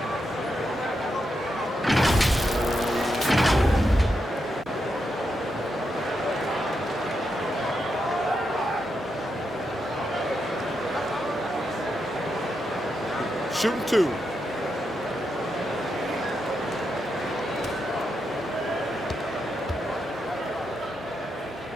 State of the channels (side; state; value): both; normal; correlation 0.84